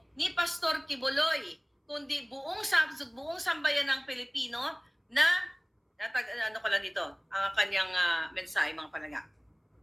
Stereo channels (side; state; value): both; identical; correlation 1.00